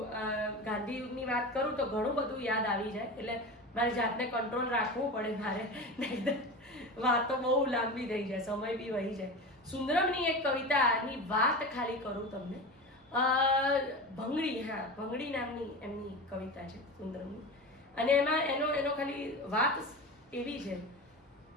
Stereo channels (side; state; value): both; normal; correlation 0.28